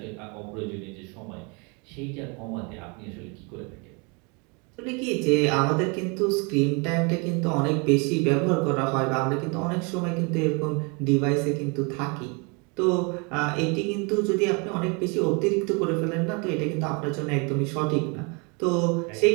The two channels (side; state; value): left; quieter; 31.8 dB